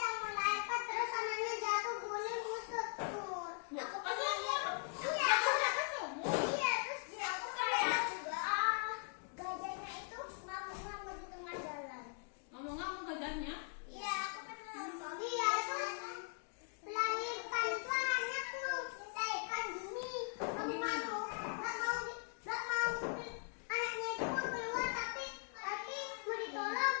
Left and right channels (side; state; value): right; silent; 51 dB below the other